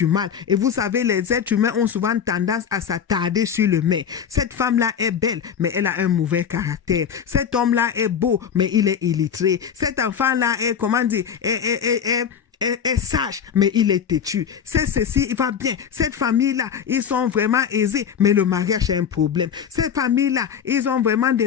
mal. Et vous savez, les êtres humains ont souvent tendance à s'attarder sur le mais. Cette femme-là est belle, mais elle a un mauvais caractère. Cet homme-là est beau, mais il est illettré. Cet enfant-là est, est sage, mais il est têtu. C'est ceci, il va bien. Cette famille-là, ils sont vraiment aisés, mais le mariage est un problème. Cette famille-là, ils ont vraiment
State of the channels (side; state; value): right; quieter; 7.8 dB